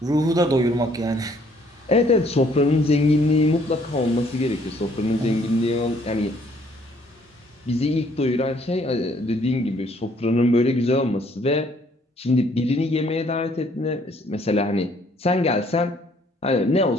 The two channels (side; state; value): both; normal; correlation 0.64